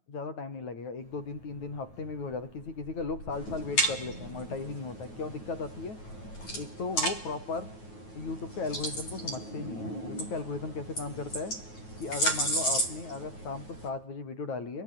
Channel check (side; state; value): right; late; 9.3 ms